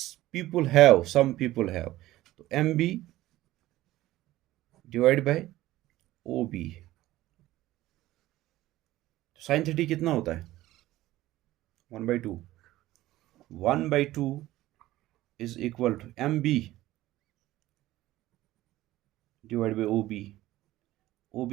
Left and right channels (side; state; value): left; quieter; 16.0 dB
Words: पीपल हैव, तो M B divide by O B, sine 30 कितना होता है 1/2, 1/2 is equal to M B divide by O B, O